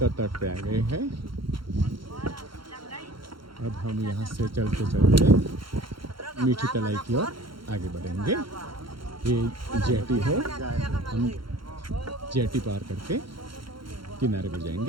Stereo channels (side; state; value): left; late; 0.73 ms